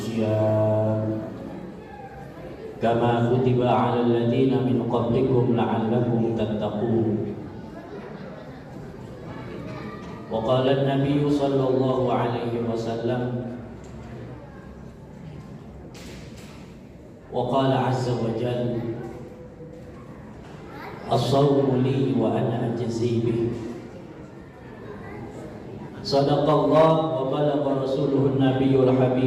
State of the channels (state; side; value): identical; both; correlation 1.00